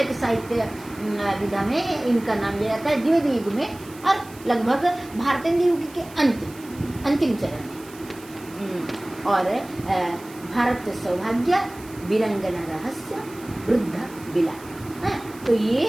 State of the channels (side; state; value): right; noise; hiss, 21 dB below the sound